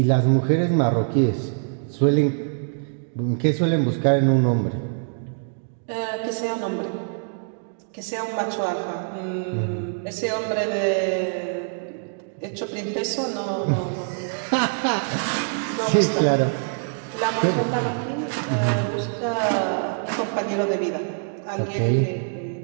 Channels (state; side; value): silent; left; digital silence